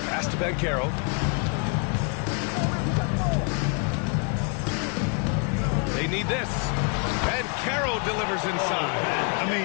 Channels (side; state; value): right; quieter; 36.1 dB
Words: pass to Banchero. They need this. Banchero delivers inside. I